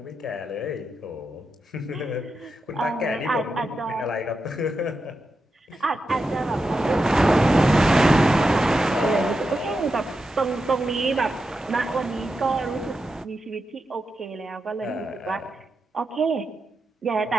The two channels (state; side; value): normal; both; correlation 0.88